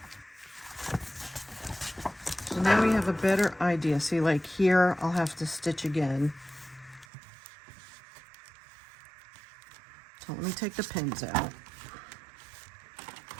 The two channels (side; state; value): left; drops out; at 7.1 s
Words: So now we have a better idea. See, like here, I'll have to stitch again. So let me take the pins out.